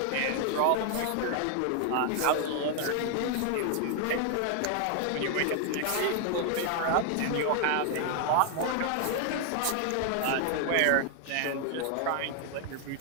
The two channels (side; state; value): both; different; correlation 0.00